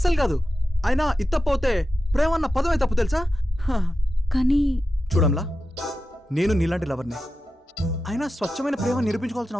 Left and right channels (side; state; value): both; normal; correlation 0.91